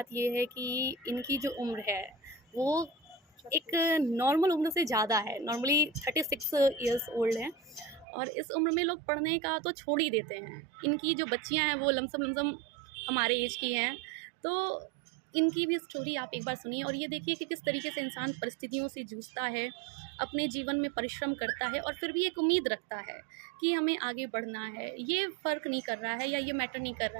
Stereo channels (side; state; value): left; drops out; at 8.1 s